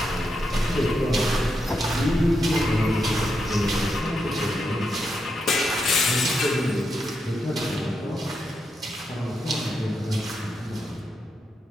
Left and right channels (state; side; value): normal; both; correlation 0.84